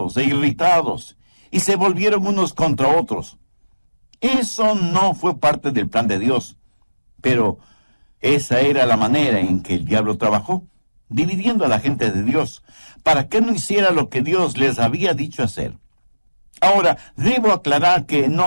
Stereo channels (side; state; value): both; inverted; correlation -1.00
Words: e irritados y se volvieron unos contra otros. Eso no fue parte del plan de Dios, pero esa era la manera en que el diablo trabajó, dividiendo a la gente de Dios, para que no hiciera lo que Dios les había dicho hacer. Ahora, debo aclarar que